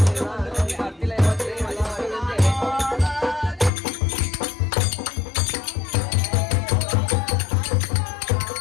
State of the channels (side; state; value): right; drops out; at 3.7 s